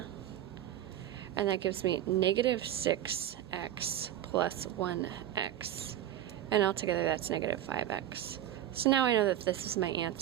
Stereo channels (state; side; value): quieter; left; 12.1 dB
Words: and that gives me -6x plus 1x. And altogether that's -5x. So now I know that this is my